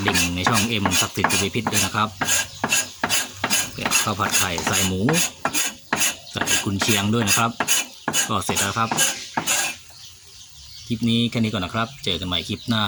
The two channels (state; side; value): identical; both; correlation 1.00